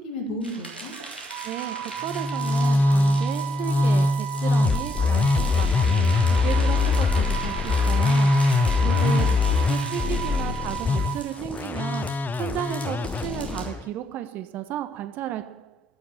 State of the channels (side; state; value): both; normal; correlation 0.77